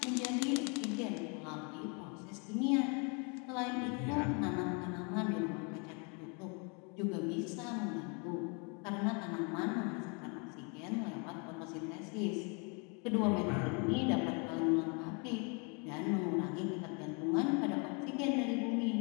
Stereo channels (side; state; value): right; quieter; 34.2 dB